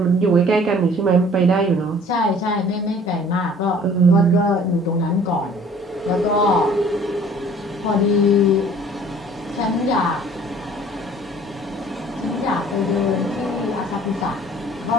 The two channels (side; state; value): both; normal; correlation 0.52